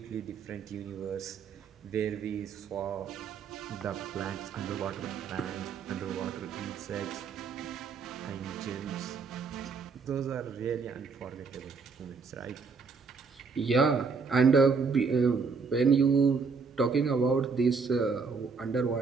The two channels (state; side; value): quieter; left; 5.0 dB